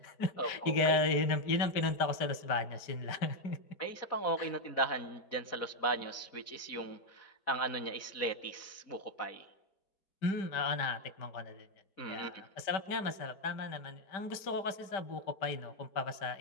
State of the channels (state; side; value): late; right; 5.1 ms